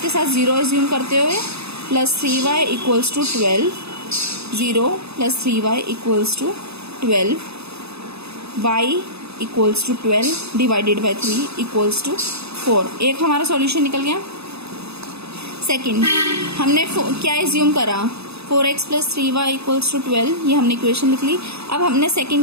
के साथ 0 एज्यूम करते हुए plus 3y equals to 12, 0 plus 3y equals to 12, y equals to 12 divided by 3 equals to 4। एक हमारा सॉल्यूशन निकल गया। सेकंड, हमने क्या एज्यूम करा, 4x plus 3y equals to 12, ये हमने इक्वेशन लिख ली। अब हमने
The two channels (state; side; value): late; left; 0.79 ms